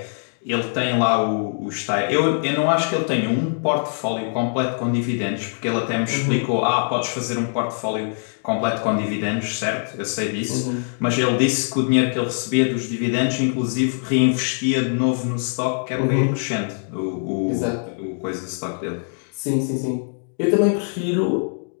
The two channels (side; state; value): right; silent; 64 dB below the other